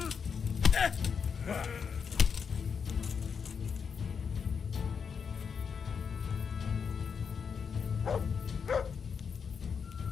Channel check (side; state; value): right; quieter; 6.3 dB